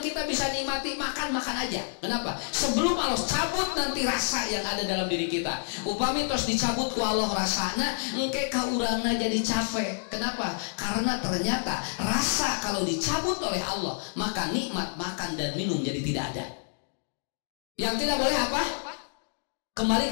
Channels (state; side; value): silent; right; digital silence